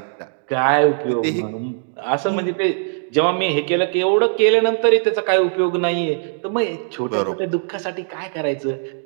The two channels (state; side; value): silent; left; digital silence